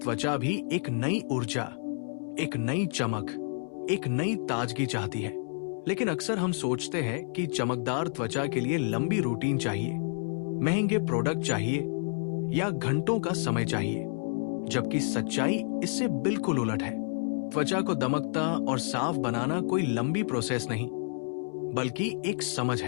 भी एक नई ऊर्जा, एक नई चमक, एक नई ताजगी चाहती है। लेकिन अक्सर हम सोचते हैं कि चमकदार त्वचा के लिए लंबी रूटीन चाहिए, महंगे प्रोडक्ट चाहिए या घंटों का समय चाहिए, जबकि सच्चाई इससे बिल्कुल उलट है। त्वचा को दमकता और साफ बनाना कोई लंबी प्रोसेस नहीं, बल्कि एक समझ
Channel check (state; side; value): silent; right; 58 dB below the other